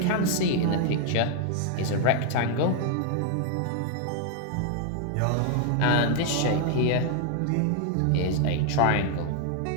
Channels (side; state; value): both; different; correlation 0.00